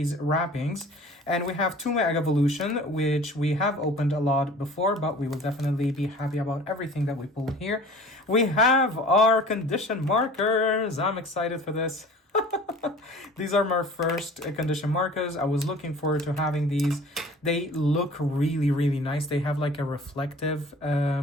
wrappings. And we have 2 Mega Evolution, which we have opened a lot before, but we will definitely be happy about everything that we pull here. We have our condition markers. I'm excited for this. These are my first condition markers. I was looking forward to having these. They look really, really nice. They have like a reflective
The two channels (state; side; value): normal; both; correlation 0.45